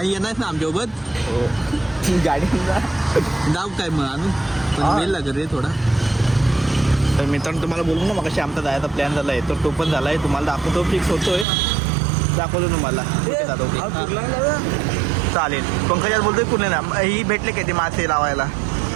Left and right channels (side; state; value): left; drops out; at 11.5 s